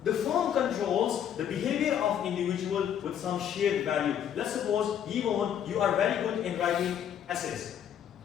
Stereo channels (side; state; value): right; quieter; 9.4 dB